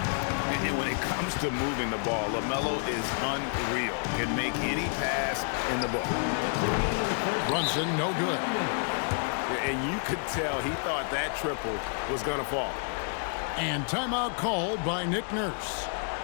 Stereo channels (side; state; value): right; silent; 58 dB below the other